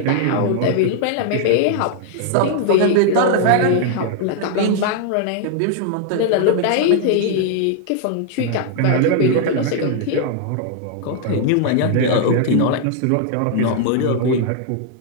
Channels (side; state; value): both; different; correlation 0.00